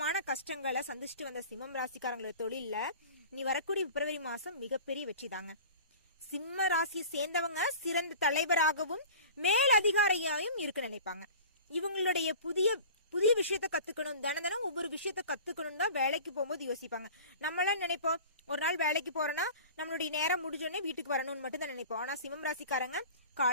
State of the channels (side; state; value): both; inverted; correlation -0.40